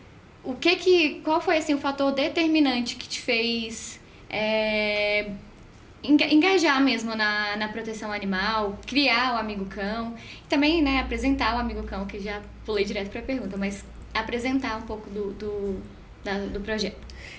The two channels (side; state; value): both; identical; correlation 1.00